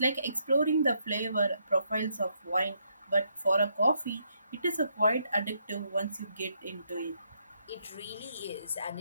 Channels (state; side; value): inverted; both; correlation -0.76